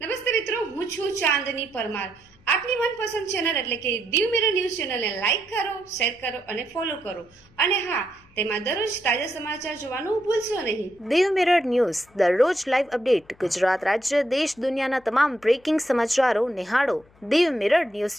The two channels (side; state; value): left; noise; hum, 30 dB below the sound